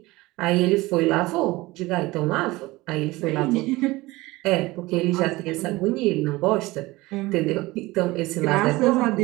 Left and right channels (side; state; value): left; quieter; 20.5 dB